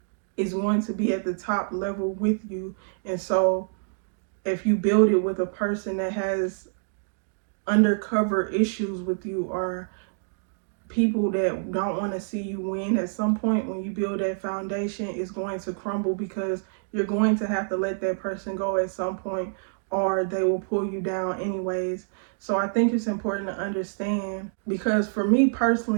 is going to be at the top level with you. And so if you build it with a person that has undercover issues with you, or people that don't want to see you win, at some point when you build that foundation, it's going to crumble, because you're going to have to let that person go at some point, or they will pull you down anyways. So I think it's important to understand, because for me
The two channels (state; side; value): silent; left; digital silence